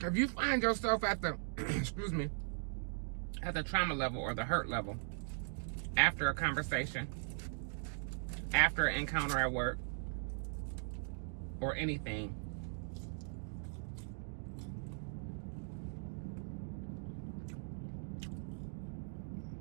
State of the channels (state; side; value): silent; left; digital silence